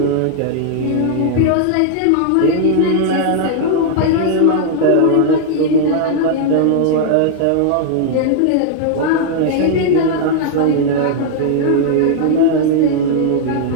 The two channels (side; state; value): both; different; correlation -0.01